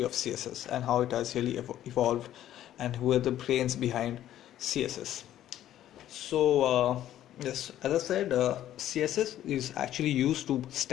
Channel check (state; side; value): quieter; right; 12.3 dB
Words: of CSS and how it has really evolved and who are the brains behind CSS. So yes, as I said, CSS is actually used to